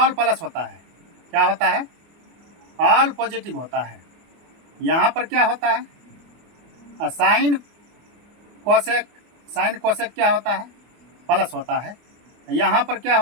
प्लस होता है, क्या होता है? ऑल पॉजिटिव होता है। यहाँ पर क्या होता है? साइन कोसेक क्या होता है? प्लस होता है। यहाँ पर क्या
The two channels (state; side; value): late; left; 24 ms